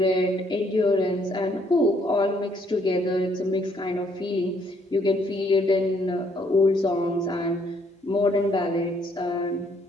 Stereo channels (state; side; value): normal; both; correlation 0.68